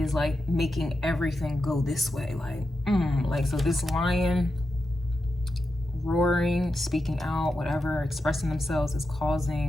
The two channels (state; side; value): normal; both; correlation 0.88